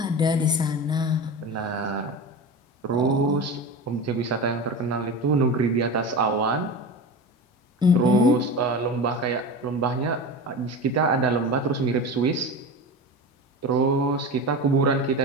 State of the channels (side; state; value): both; normal; correlation 0.27